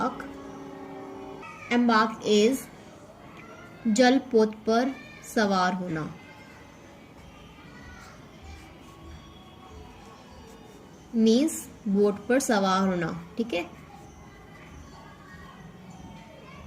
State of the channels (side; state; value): both; identical; correlation 1.00